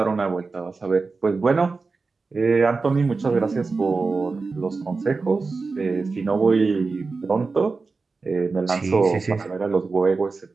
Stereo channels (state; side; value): quieter; left; 4.2 dB